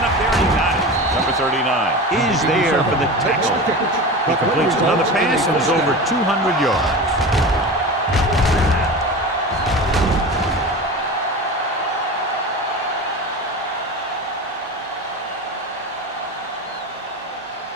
up there and he got it. Number 39 is there for the tackle. He completes another pass and is over 200 yards.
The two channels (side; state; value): both; normal; correlation 0.29